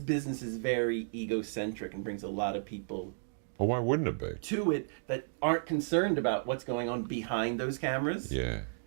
is very egocentric and brings a lot of people Oh, why wouldn't it be? to it that aren't concerned about what's going on behind those cameras. Yeah.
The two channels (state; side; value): silent; left; digital silence